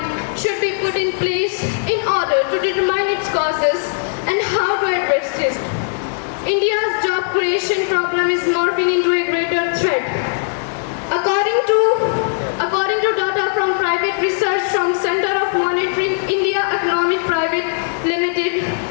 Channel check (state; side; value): silent; right; digital silence